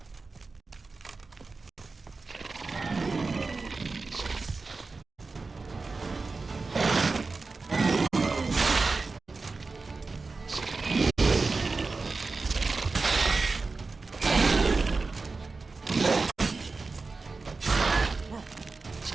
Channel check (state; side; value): quieter; left; 4.0 dB